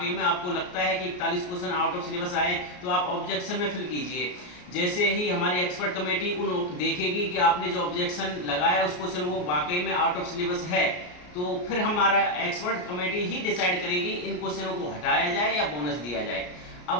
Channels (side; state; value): right; late; 33 ms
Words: में आपको लगता है कि 41 क्वेश्चन आउट ऑफ सिलेबस आए तो आप ऑब्जेक्शन में फिल कीजिए। जैसे ही हमारी एक्सपर्ट कमेटी उन देखेगी कि आपने जो ऑब्जेक्शन लगाया उस क्वेश्चन वो वाकई में आउट ऑफ सिलेबस है, तो फिर हमारा एक्सपर्ट कमेटी ही डिसाइड करेगी इन क्वेश्चनों को हटाया जाए या बोनस दिया जाए।